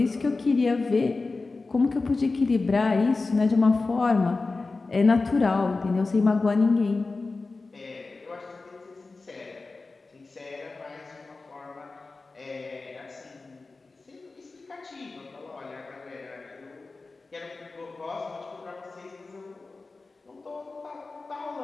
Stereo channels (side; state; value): right; quieter; 3.7 dB